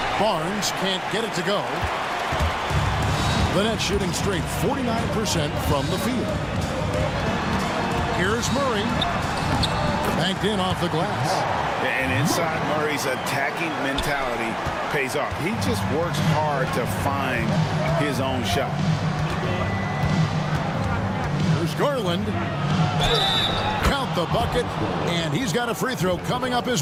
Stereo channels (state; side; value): identical; both; correlation 1.00